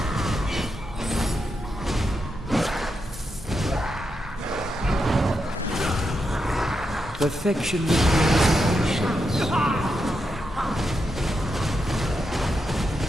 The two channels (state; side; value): normal; both; correlation 0.85